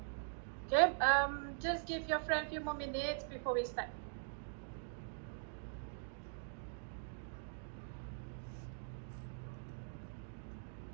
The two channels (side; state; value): left; silent; digital silence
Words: Okay, just give your friend a few more minutes before we start.